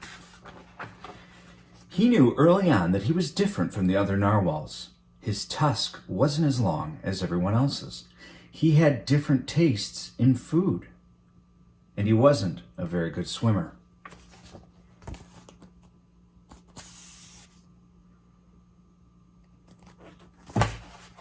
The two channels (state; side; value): identical; both; correlation 1.00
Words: He knew early on that he was different from the other narwhals. His tusk wasn't as long as everyone else's. He had different tastes in food. And he wasn't a very good swimmer.